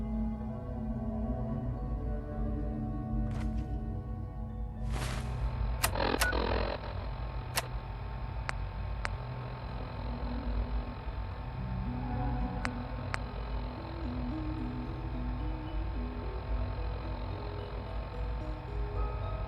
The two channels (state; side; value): identical; both; correlation 1.00